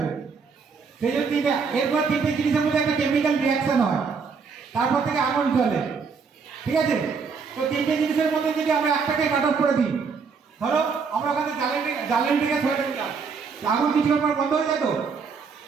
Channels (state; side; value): quieter; left; 5.4 dB